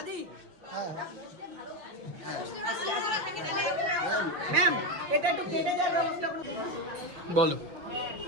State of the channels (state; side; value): late; left; 5.7 ms